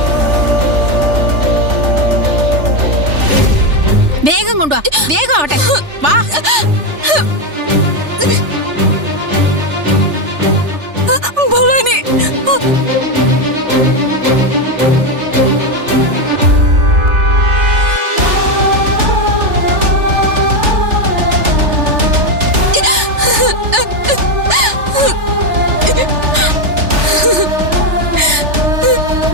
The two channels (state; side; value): late; left; 3.4 ms